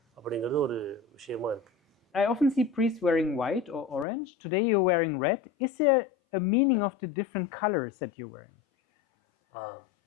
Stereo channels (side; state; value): right; drops out; at 4.0 s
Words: அப்படிங்கிறது ஒரு விஷயமா இருக்குது. I often see priests wearing white or orange. Today you're wearing red. Is there a meaning of the different colors that you're wearing?